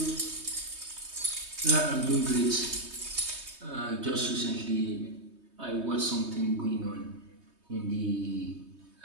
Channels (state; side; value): late; left; 3.2 ms